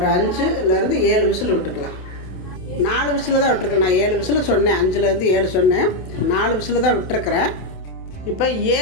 5லேருந்து 7 விசில் விட்டுக்கலாம். 4 விசில் தான் விட்டுருக்கேன். நான் 7 விசில் சொன்னேன், 5லேருந்து 7 சொன்னேன். 4 விசில் தான் விட்டுருக்குறேன். இப்போ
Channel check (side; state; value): right; late; 27 ms